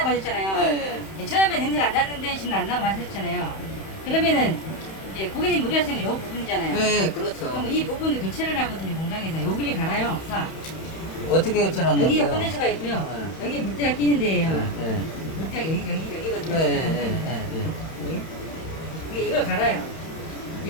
하셨잖아요. 네. 처음에 냄새가 안 났는데 지금 안 나고 하셨잖아요. 그러면은 이제 고객님 우려하시는 건 이 부분이잖아요. 네, 그렇죠. 그럼 이 부분을 교체를 하거든요. 공장에서 여기를 갈아요. 싹. 어떻게 교체한다고요? 여기가 컨덴서가 있고요. 여기 물때가 끼는 데예요. 네. 물때가 여기거든요. 네. 여기. 이게 이걸 갈아요.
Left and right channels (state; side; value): late; right; 31 ms